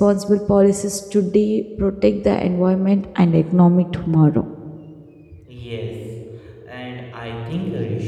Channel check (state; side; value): identical; both; correlation 1.00